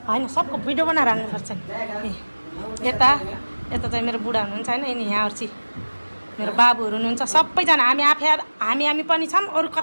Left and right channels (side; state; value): both; inverted; correlation -1.00